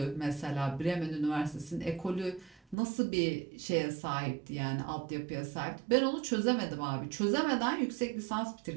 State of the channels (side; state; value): left; drops out; at 2.8 s